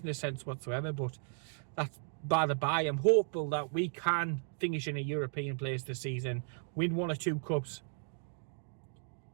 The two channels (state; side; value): silent; left; 54 dB below the other